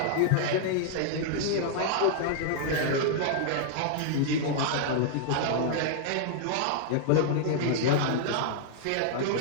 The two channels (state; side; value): different; both; correlation -0.01